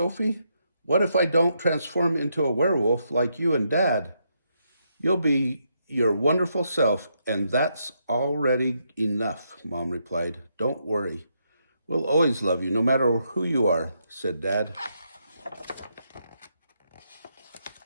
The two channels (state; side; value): inverted; both; correlation -0.79